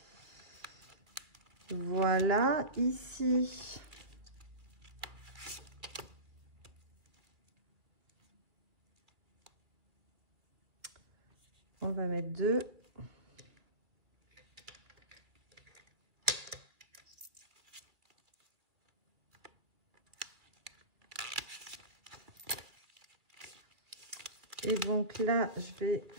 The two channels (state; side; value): late; left; 2.3 ms